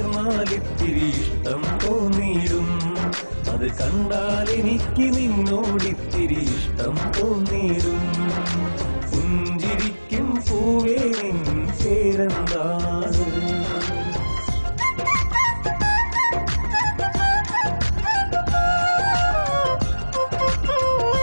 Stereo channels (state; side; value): inverted; both; correlation -1.00